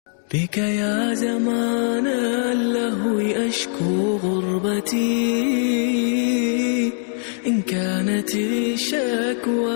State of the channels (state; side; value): silent; right; 60 dB below the other